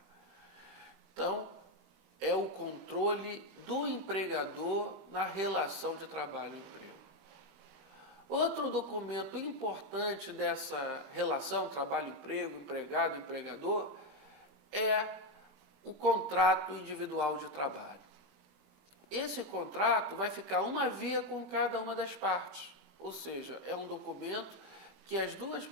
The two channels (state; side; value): late; left; 21 ms